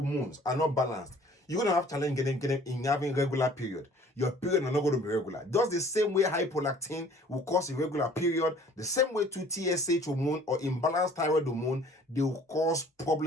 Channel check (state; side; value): normal; both; correlation 0.53